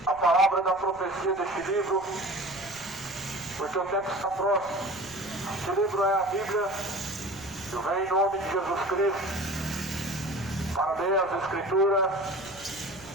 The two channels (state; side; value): noise; right; rumble, 23 dB below the sound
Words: a palavra da profecia deste livro, porque o tempo está próximo. Este livro é a Bíblia. Eu venho em nome de Jesus Cristo para ler as Escrituras,